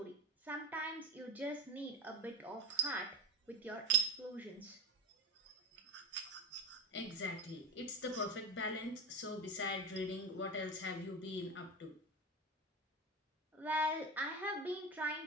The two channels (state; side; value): normal; both; correlation 0.26